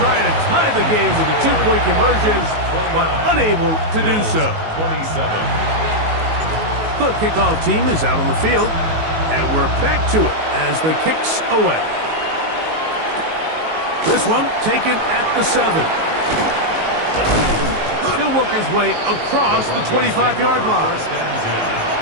to tie the game with a 2-point conversion, but unable to do so. The kickoff team is out on the field, and we're back to it as the kick's away. This one taken at the 7. He'll work his way across the 25-yard line.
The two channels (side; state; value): left; late; 19 ms